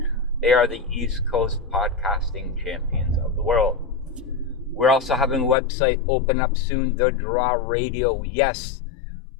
They are the East Coast podcasting champions of the world. We're also having a website open up soon, The Draw Radio. Yes,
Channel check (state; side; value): drops out; right; at 5.6 s